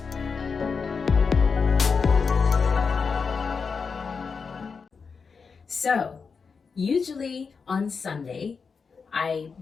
So usually on Sunday I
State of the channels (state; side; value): quieter; right; 5.3 dB